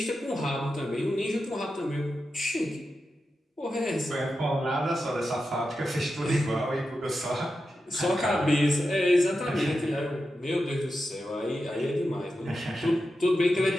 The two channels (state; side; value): normal; both; correlation 0.90